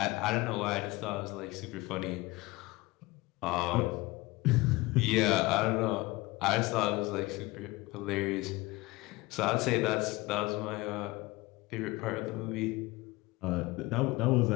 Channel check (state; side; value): quieter; right; 21.4 dB